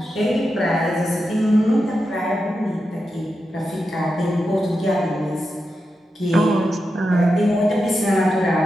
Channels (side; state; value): both; normal; correlation 0.88